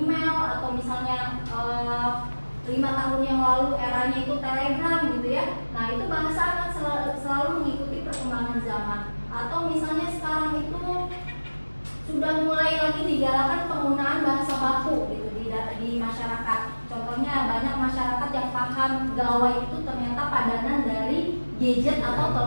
atau misalnya 5 tahun yang lalu eranya itu Telegram gitu ya. Nah itu bahasa akan selalu mengikuti perkembangan zaman. Atau misalnya sekarang itu sudah mulai lagi digalakan penggunaan bahasa baku gitu di di masyarakat. Contohnya banyak masyarakat yang paham gawai itu ternyata padanan dari gadget atau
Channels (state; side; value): inverted; both; correlation -1.00